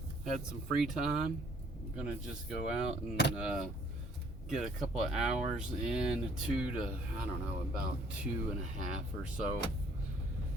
had some free time. I'm gonna just go out and get a couple of hours in, about 2.5 or so.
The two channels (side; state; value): both; normal; correlation 0.60